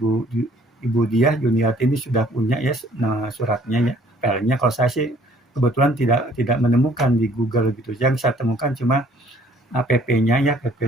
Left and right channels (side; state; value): both; normal; correlation 0.58